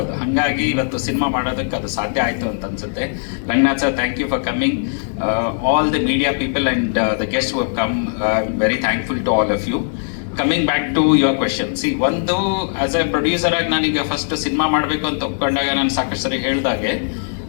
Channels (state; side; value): silent; right; digital silence